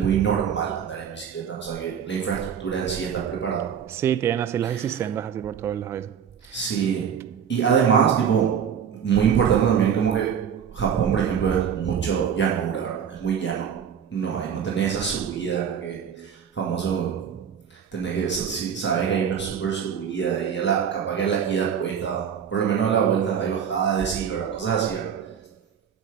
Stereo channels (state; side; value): quieter; left; 7.8 dB